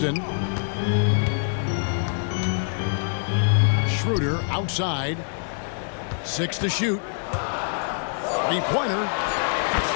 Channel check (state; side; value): silent; right; 61 dB below the other